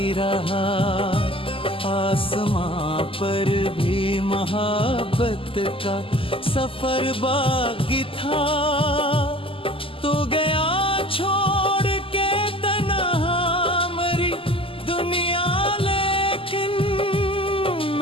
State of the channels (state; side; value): late; right; 0.26 ms